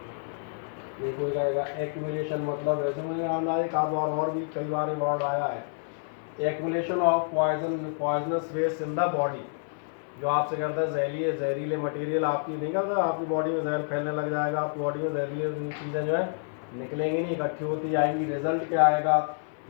नहीं कोई कहेगा एक्यूमुलेशन मतलब वैसे मैंने आना एक आध बार और भी कई बार ये वर्ड आया है। Accumulation of poisonous waste in the body, जो आपसे करता है जहरीले मटेरियल आपकी नहीं करता, आपकी बॉडी में जहर फैलने लग जाएगा, आपकी बॉडी में जहरीले चीज़ें जो है निकलेंगी नहीं, इकट्ठी होती जाएंगी। रिजल्ट क्या आएगा?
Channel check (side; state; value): right; silent; 55 dB below the other